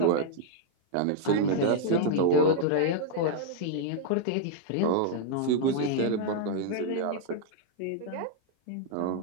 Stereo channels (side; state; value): both; different; correlation -0.01